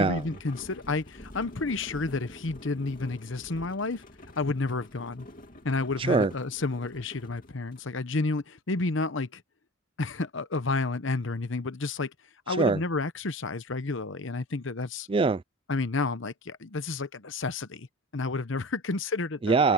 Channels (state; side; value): normal; both; correlation 0.38